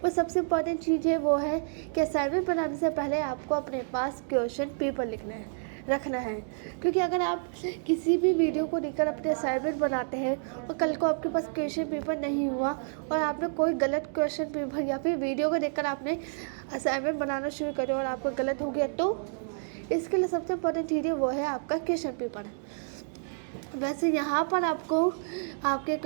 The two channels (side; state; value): left; silent; digital silence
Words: वो सबसे इम्पॉर्टेंट चीज़ है वो है कि असाइनमेंट बनाने से पहले आपको अपने पास क्वेश्चन पेपर रखना है। क्योंकि अगर आप किसी भी वीडियो को लेकर अपने असाइनमेंट बनाते हैं और कल को आपके पास क्वेश्चन पेपर नहीं हुआ और आपने कोई गलत क्वेश्चन पेपर या फिर वीडियो को देखकर आपने असाइनमेंट बनाना शुरू करो और आपको गलत हो गया, तो इसके लिए सबसे इम्पॉर्टेंट चीज़ है वो है आपका क्वेश्चन पेपर। वैसे यहाँ पर आपको आपके